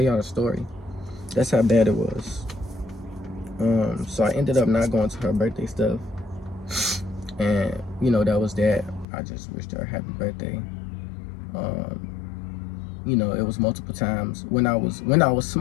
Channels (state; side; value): drops out; right; at 9.1 s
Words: y'all the story. That's how bad it was. So I ended up not going to her birthday stuff. And, you know, that was that. I just wished her a happy birthday. You know, it was multiple times when I was